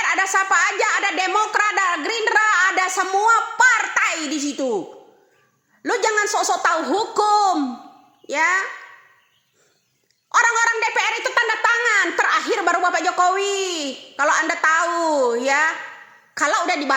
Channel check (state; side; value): identical; both; correlation 1.00